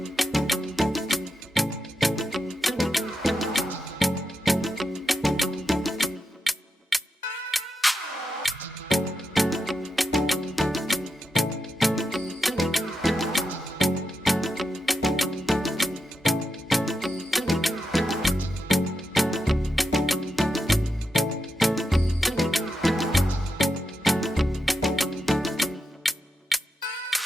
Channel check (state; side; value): normal; both; correlation 0.86